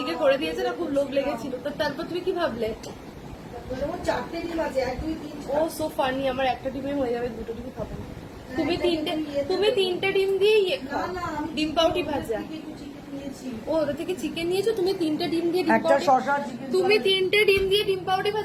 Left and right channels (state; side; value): identical; both; correlation 1.00